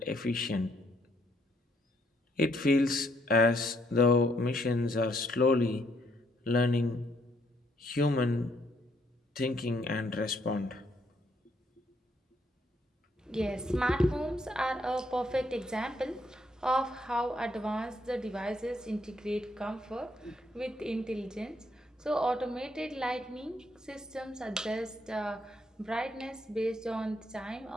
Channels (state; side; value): normal; both; correlation 0.71